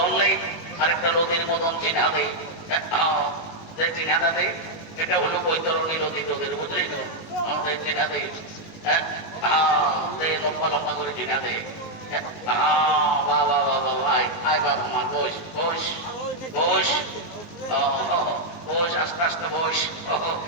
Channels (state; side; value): late; right; 19 ms